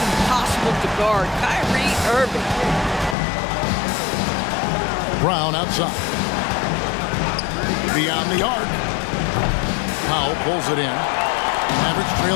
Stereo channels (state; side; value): drops out; right; at 3.2 s